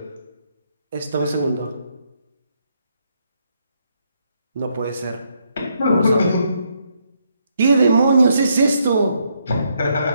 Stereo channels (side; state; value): both; inverted; correlation -0.75